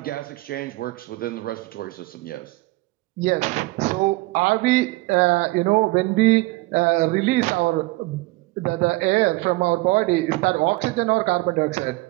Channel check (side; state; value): left; quieter; 21.4 dB